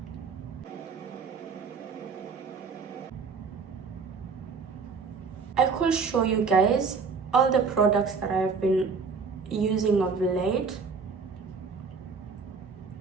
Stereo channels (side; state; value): left; quieter; 5.2 dB